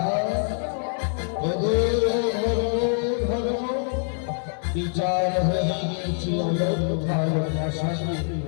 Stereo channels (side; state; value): right; silent; digital silence